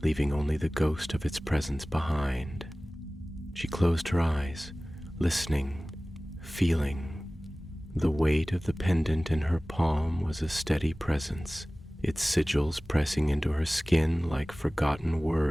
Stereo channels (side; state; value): both; normal; correlation 0.98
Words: leaving only the ghost of its presence behind. She closed her eyes, listening, feeling. The weight of the pendant in her palm was a steady presence, its sigils pressing into her skin like forgotten